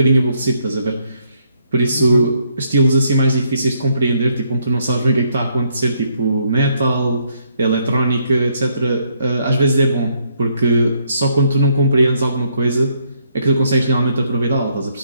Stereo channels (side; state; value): both; inverted; correlation -0.72